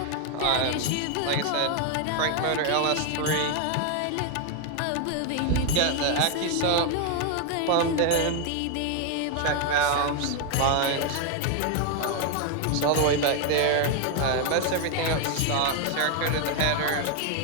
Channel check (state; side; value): different; both; correlation 0.01